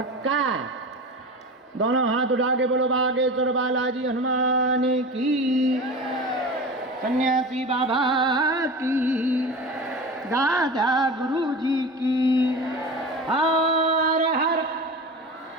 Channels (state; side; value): normal; both; correlation 0.31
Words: दोनों हाथ उठा के बोलो बागेश्वर बालाजी हनुमान की, सन्यासी बाबा की, दादा गुरु जी की। हर हर।